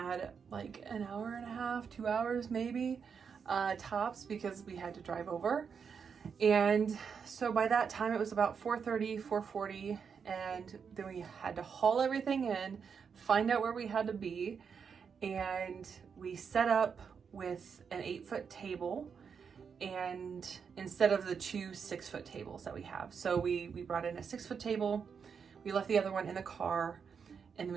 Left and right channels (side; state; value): left; quieter; 6.4 dB